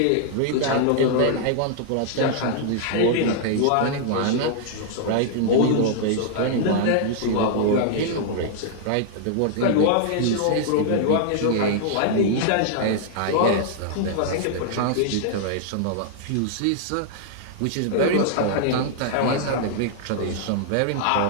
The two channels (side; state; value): both; different; correlation -0.01